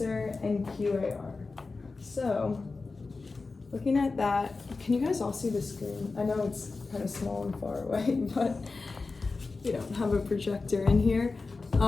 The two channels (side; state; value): right; quieter; 3.9 dB